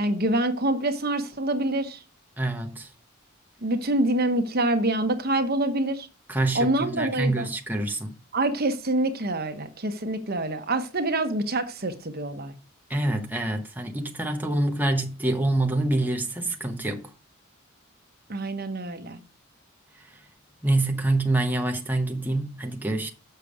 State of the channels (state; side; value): normal; both; correlation 0.49